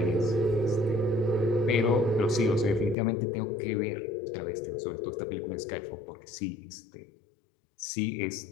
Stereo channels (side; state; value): right; drops out; at 3.0 s